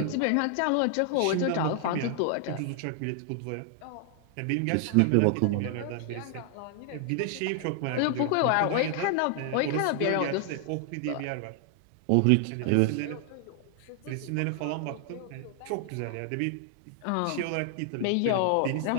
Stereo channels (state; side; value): different; both; correlation 0.00